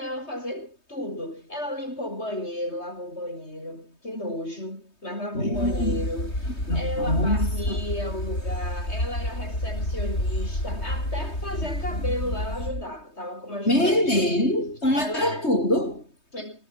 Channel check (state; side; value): late; right; 3.2 ms